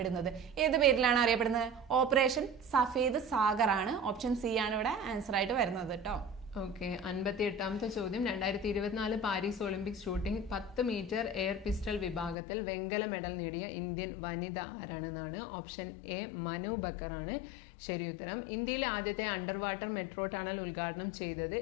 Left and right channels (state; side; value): drops out; right; at 12.4 s